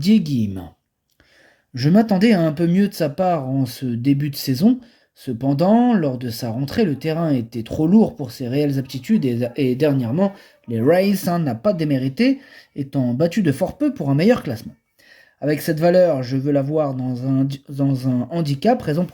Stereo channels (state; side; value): identical; both; correlation 1.00